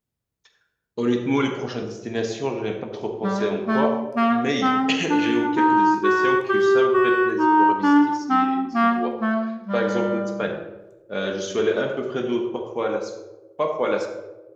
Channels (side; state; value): both; identical; correlation 1.00